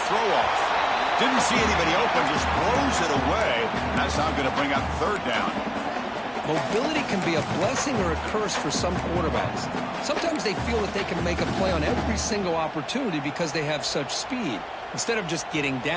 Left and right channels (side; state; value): both; identical; correlation 1.00